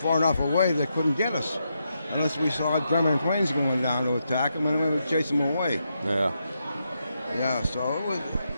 far enough away they couldn't get us, unless we saw German planes going down to attack them, and we would chase them away. Yeah. Yeah. So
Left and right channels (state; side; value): inverted; both; correlation -0.83